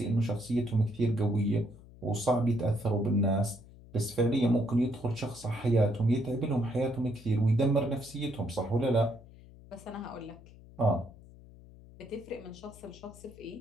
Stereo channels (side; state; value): left; noise; hum, 21 dB below the sound